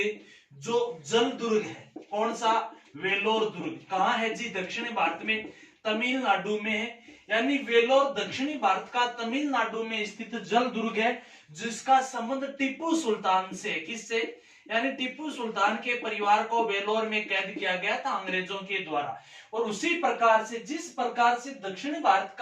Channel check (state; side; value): identical; both; correlation 1.00